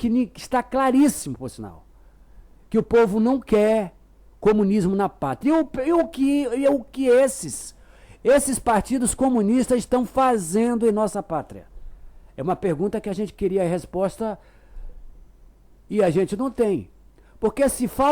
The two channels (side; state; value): both; identical; correlation 1.00